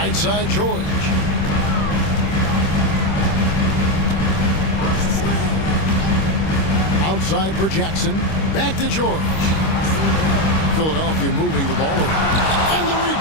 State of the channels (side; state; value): right; late; 26 ms